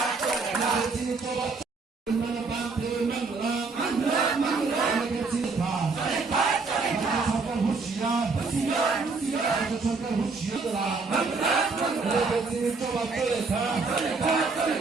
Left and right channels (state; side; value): quieter; left; 4.2 dB